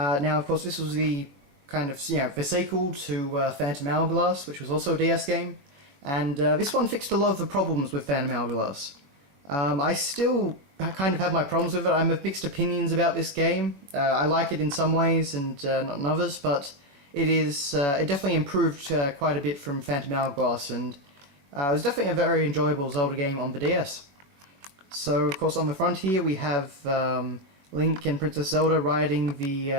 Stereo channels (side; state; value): left; late; 21 ms